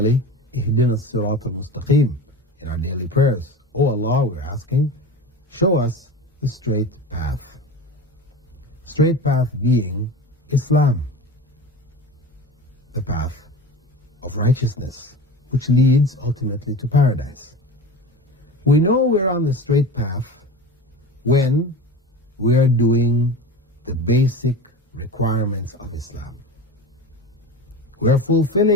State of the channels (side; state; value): both; normal; correlation 0.32